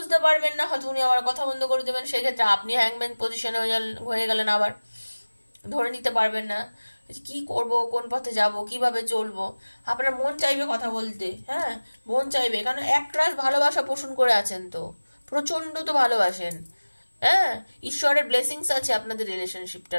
পারবেন না, হয়তো উনি আবার কথা বন্ধ করে দেবেন, সেক্ষেত্রে আপনি হ্যাংম্যান পজিশনে হয়ে গেলেন, আবার ধরে নিতে পারবেন না কি করব, কোন পথে যাব, কিভাবে চলবো। আপনার মন চাইবে কথা বলতে, হ্যাঁ মন চাইবে, কারণ একরাশ ভালোবাসা পোষণ করে আছেন, তো প্রচন্ড তো ভালোবাসেন। হ্যাঁ, ঈশ্বরের ব্লেসিংস আছে আপনাদের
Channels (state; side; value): inverted; both; correlation -1.00